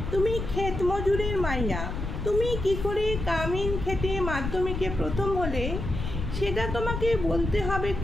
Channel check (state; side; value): noise; left; rumble, 5 dB below the sound